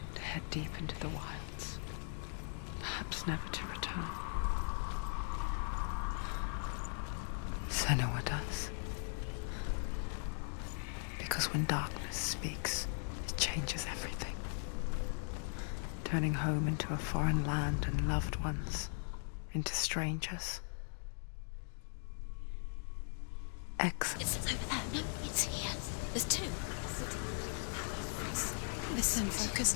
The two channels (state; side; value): silent; right; 52 dB below the other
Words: to head deep into the wilds, perhaps perhaps never to return. Senua does. Because when darkness speaks, it changes everything. Turning home into a foreign land and loved ones into strangers. Excellent. It's over there. No, it's here. There's two. Listen, focus,